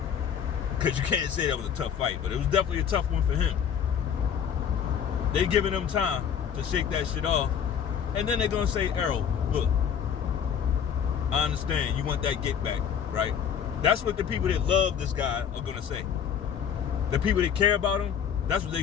because you can't say that was a tough fight, but it was definitely a tough one for him. They giving him time to shake that shit off, and then they're gonna say, Errol, look, I understand you want that get back, right? That's what the people that love this guy are gonna say. The people that care about him, that's what they're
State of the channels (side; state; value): right; quieter; 8.1 dB